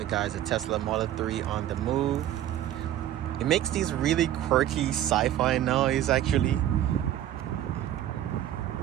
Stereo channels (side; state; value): left; quieter; 12.2 dB